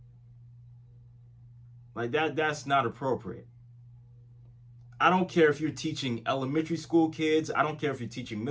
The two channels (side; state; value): both; identical; correlation 1.00